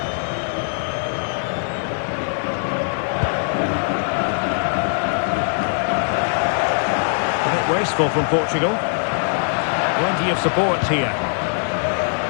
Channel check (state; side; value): silent; right; 65 dB below the other